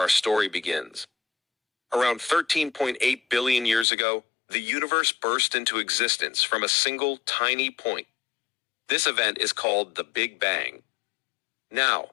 story begins. Around 13.8 billion years ago, the universe burst into existence from a single tiny point. This event is called the Big Bang. Now,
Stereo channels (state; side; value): drops out; right; at 3.9 s